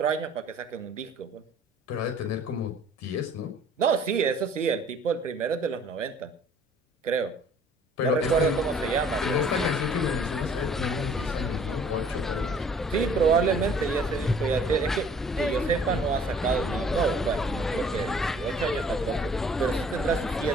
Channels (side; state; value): both; normal; correlation 0.54